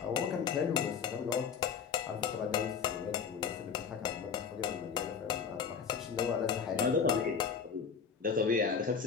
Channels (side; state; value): right; quieter; 6.5 dB